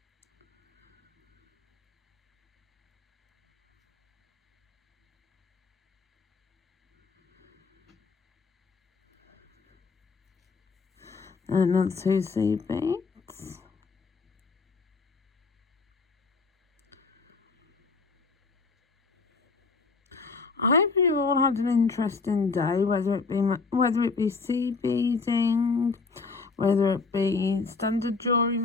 And another 2 seed beads. I hope you all had an interesting day, whether it be seed beading, whether it be standard jewellery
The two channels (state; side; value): quieter; right; 4.3 dB